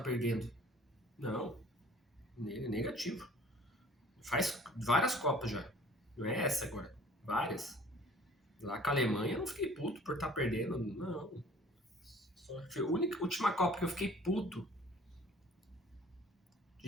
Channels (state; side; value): normal; both; correlation 0.51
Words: Não, negativo. Faz várias Copas já, não é essa agora, várias. Lá com a Alemanha eu não fiquei puto por estar perdendo, não. Foi a última Copa que eu fiquei puto